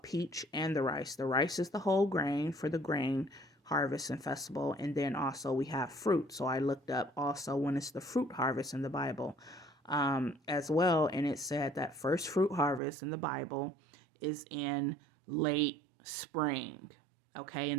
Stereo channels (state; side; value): drops out; left; at 12.8 s